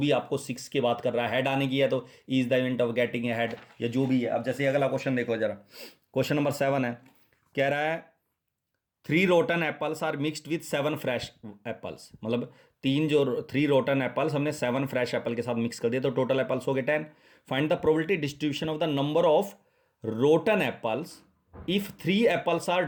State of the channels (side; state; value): both; identical; correlation 1.00